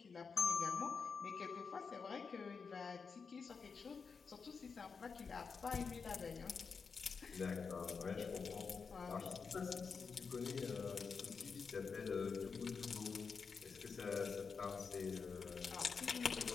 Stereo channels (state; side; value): quieter; right; 5.4 dB